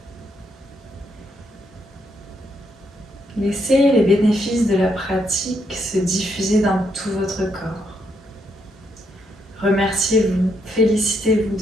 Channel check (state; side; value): normal; both; correlation 0.76